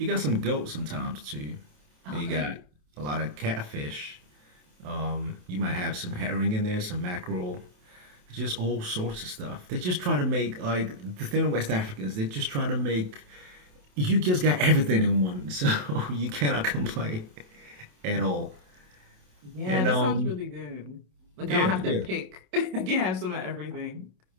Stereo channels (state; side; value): late; left; 27 ms